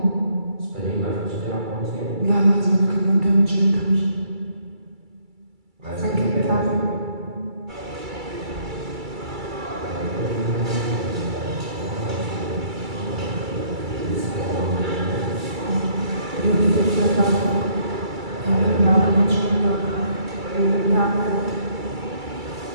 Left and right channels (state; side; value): late; left; 2.3 ms